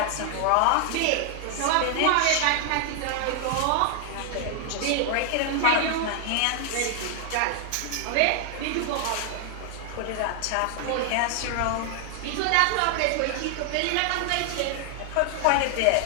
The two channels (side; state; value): both; different; correlation 0.00